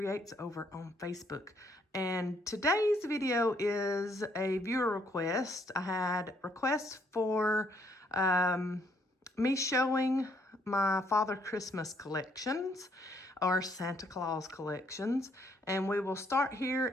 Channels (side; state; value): both; normal; correlation 0.69